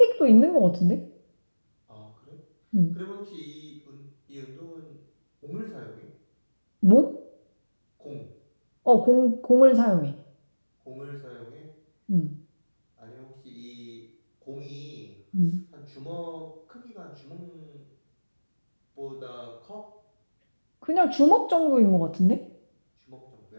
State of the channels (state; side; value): inverted; both; correlation -1.00